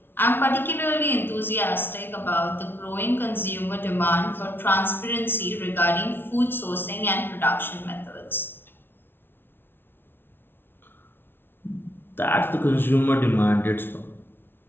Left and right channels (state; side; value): late; right; 0.11 ms